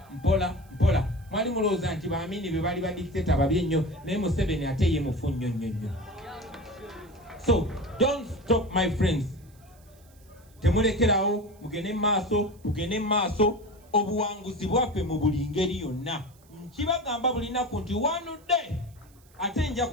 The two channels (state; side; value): noise; right; hiss, 29 dB below the sound